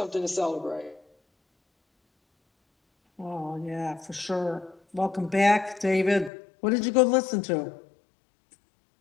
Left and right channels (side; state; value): right; drops out; at 6.3 s